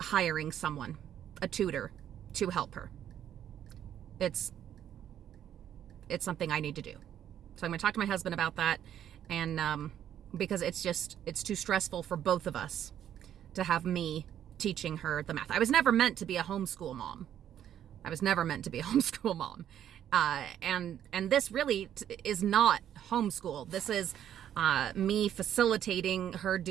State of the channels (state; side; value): quieter; left; 10.4 dB